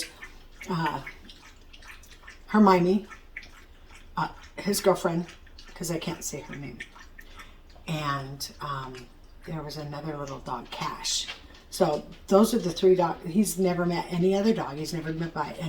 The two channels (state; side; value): identical; both; correlation 1.00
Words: Hermione, his girlfriend, because I can't say her name, and there was another little dog, Cash. So those are the 3 dogs. He's never met any other dog. He's never met by